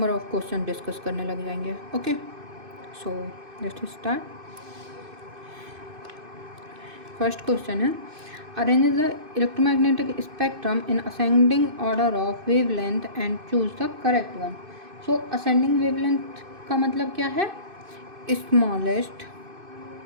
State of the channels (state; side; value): late; left; 2.6 ms